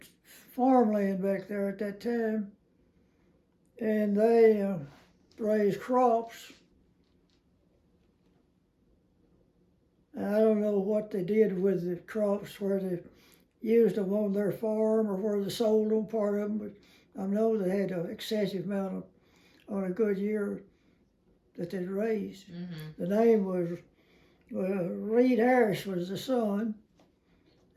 farmland back there at that time, and they raised crops. I don't know what they did with the crops, where they used them on their farm or where they sold them, part of them, but I know they had an excessive amount on a good year that they'd raised. Mm-hmm. The name was Reed Harris was the son,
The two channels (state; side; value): identical; both; correlation 1.00